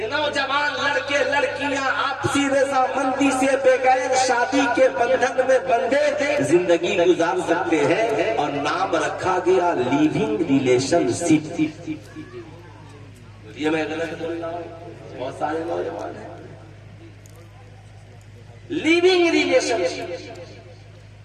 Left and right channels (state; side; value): identical; both; correlation 1.00